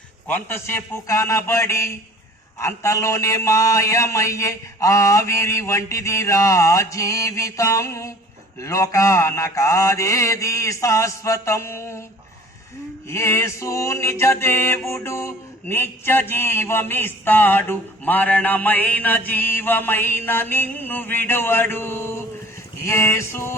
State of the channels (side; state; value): both; normal; correlation 0.49